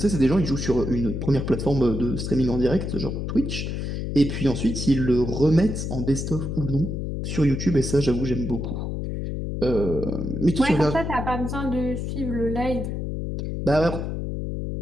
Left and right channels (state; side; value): noise; left; hum, 3 dB below the sound